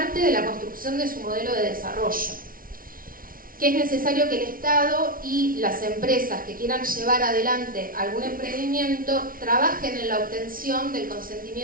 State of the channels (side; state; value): left; late; 0.42 ms